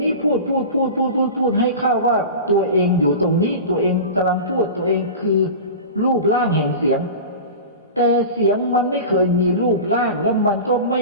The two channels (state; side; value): inverted; both; correlation -0.31